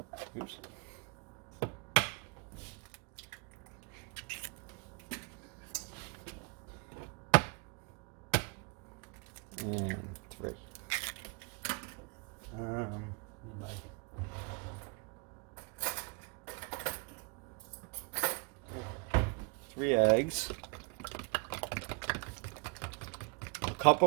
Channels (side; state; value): left; quieter; 32.2 dB